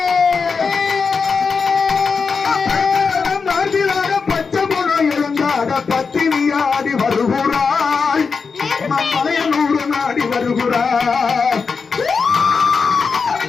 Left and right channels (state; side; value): quieter; right; 5.1 dB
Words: மார்பிலாட பச்சை போனோ இழந்தாட பத்தினியாடி வருகிறாள். மலைய 100 நாடி வருகிறாள்.